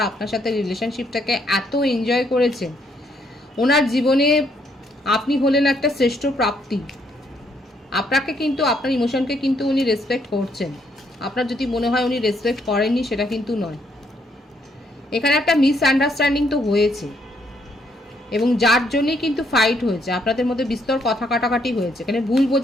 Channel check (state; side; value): normal; both; correlation 0.72